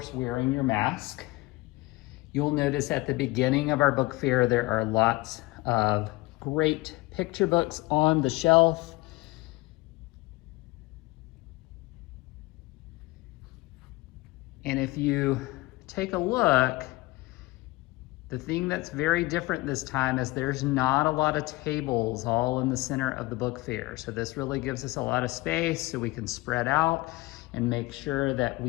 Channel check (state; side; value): quieter; right; 21.4 dB